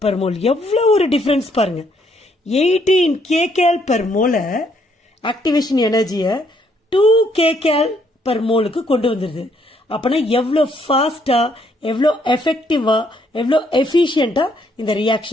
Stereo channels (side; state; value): both; normal; correlation 0.70